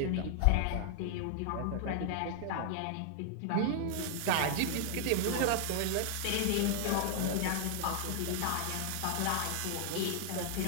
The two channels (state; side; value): different; both; correlation 0.00